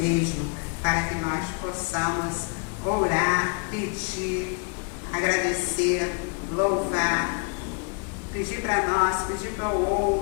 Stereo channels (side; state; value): right; quieter; 36.8 dB